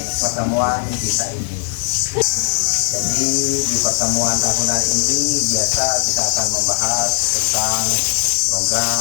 kita ini. Jadi di pertemuan tahunan ini biasa kita akan membahas tentang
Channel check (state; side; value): silent; right; digital silence